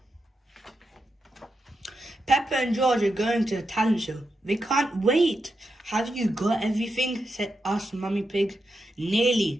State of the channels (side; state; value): both; normal; correlation 0.86